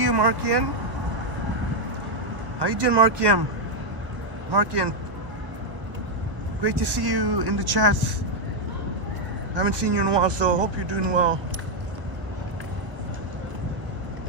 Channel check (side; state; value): left; late; 1.1 ms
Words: you, Markian. How you doing, Markian? Markian, great to see you in the chats. Haven't seen you in a while, so hope you're doing well.